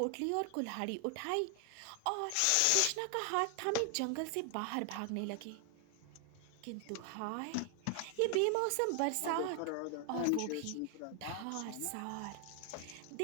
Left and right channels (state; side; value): different; both; correlation 0.00